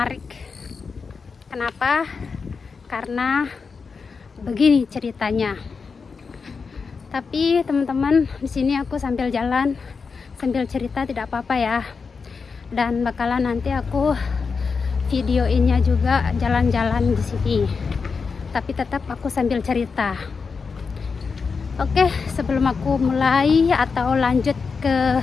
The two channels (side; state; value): right; quieter; 5.1 dB